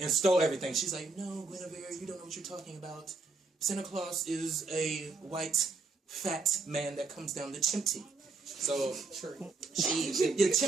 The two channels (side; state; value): left; quieter; 4.0 dB